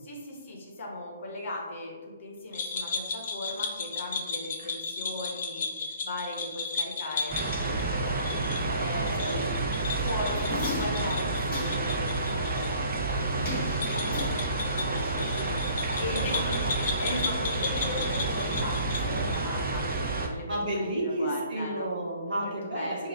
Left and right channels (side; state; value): both; inverted; correlation -0.54